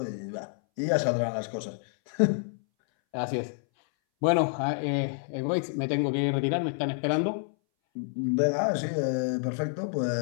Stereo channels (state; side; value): silent; right; 59 dB below the other